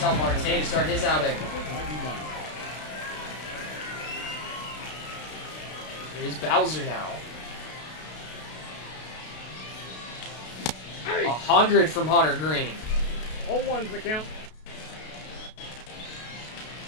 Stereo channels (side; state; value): right; late; 32 ms